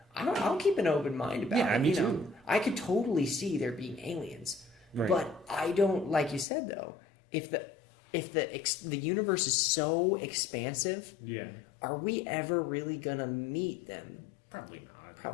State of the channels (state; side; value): drops out; right; at 6.5 s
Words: I'll keep an open mind about it. Yeah, me too. Know, I could totally see there being aliens, but I don't. Like you said, though, if the universe is so expansive, are we ever really gonna meet them? Probably not.